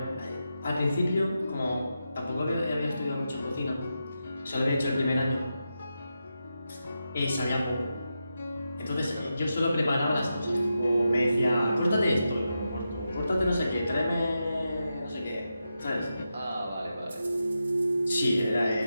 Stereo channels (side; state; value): both; inverted; correlation -0.88